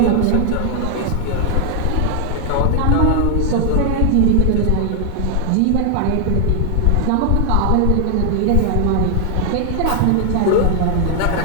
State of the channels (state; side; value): different; both; correlation 0.00